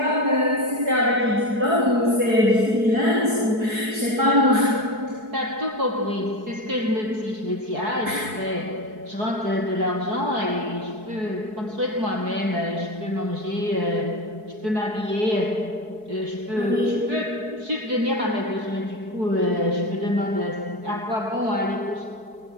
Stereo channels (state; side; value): late; left; 4.7 ms